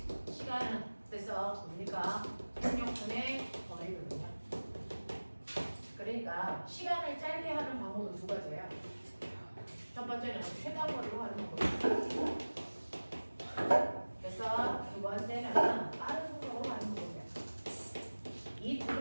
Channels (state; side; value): inverted; both; correlation -1.00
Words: 시간은 그래서 뭡니까? 속력분의 거리거든요. 그러니까 시간을 짧게 하는 방법은 두 가지예요. 첫 번째는 최단 거리로 하는 방법이에요. 그래서 두 번째는 빠른 속도로 하는 방법이에요. 이 두